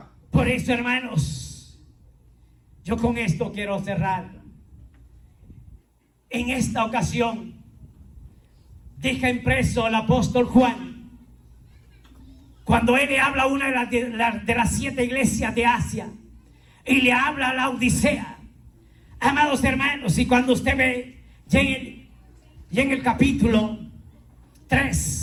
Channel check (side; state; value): both; identical; correlation 1.00